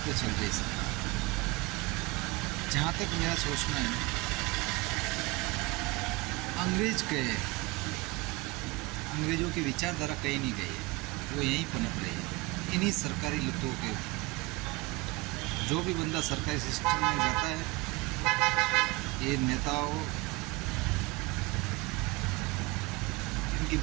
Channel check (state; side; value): quieter; left; 23.1 dB